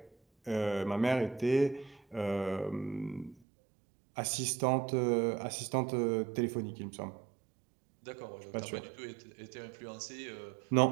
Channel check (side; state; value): left; drops out; at 3.4 s